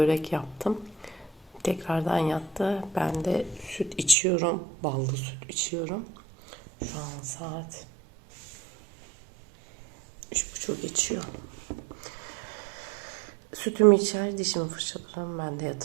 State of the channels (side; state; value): left; drops out; at 4.2 s